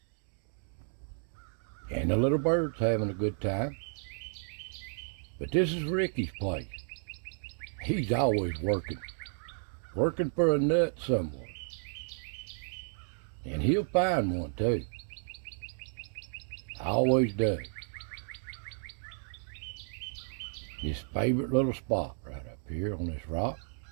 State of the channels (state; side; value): silent; left; digital silence